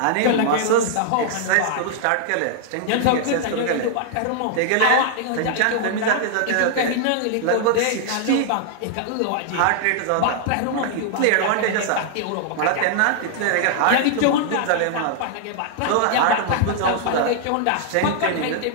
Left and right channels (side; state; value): both; different; correlation -0.01